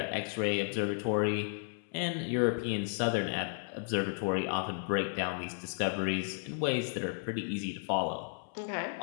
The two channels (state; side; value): silent; right; 55 dB below the other